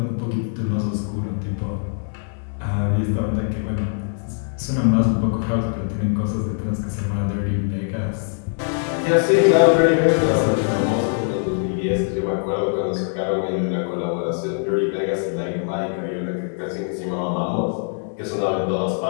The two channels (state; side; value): silent; right; digital silence